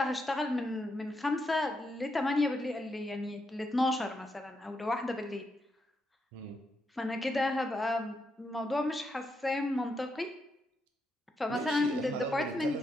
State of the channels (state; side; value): normal; both; correlation 0.82